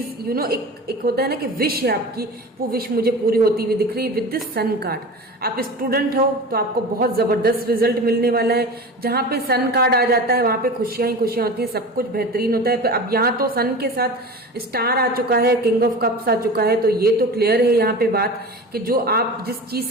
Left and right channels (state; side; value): normal; both; correlation 0.32